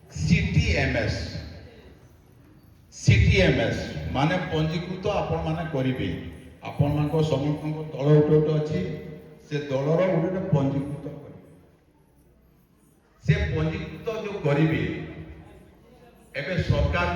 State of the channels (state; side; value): identical; both; correlation 1.00